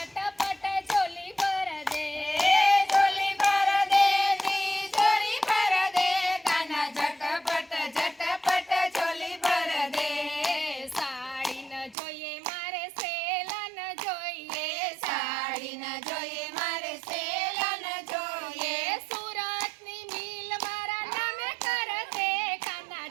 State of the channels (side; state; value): left; drops out; at 12.0 s